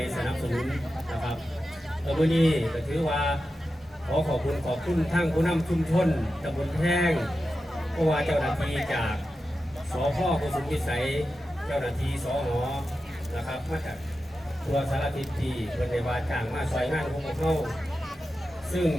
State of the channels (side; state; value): both; normal; correlation 0.91